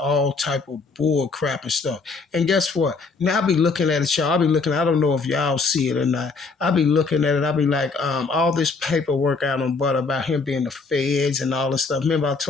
type of bull crap and stuff. And guess what? Now I be looking at it, y'all. I don't know if y'all see it or not. I be looking at it. I be like, all this paperwork out on Butta about him being the feds and all this stuff. Remember I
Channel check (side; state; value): right; quieter; 4.3 dB